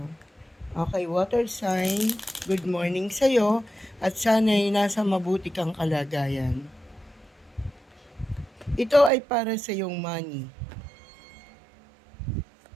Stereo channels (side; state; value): left; drops out; at 9.1 s